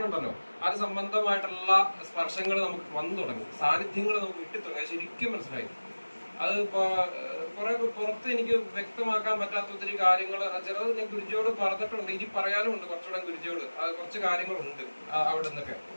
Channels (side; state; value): both; inverted; correlation -1.00